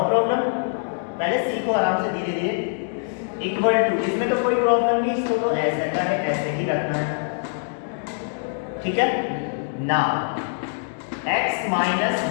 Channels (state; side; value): silent; right; digital silence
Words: problem, पहले सीखो आराम से धीरे धीरे। इक्वल टू, इसमें तो कोई प्रॉब्लम नहीं, इसको तो ऐसे का है ऐसे ही रखना है, ठीक है ना। x minus